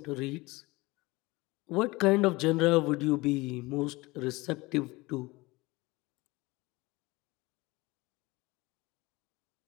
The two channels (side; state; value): right; quieter; 22.3 dB